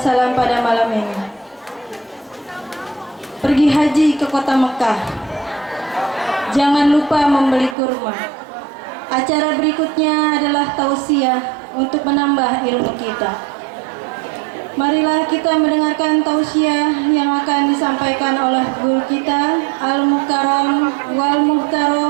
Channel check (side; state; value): left; drops out; at 7.8 s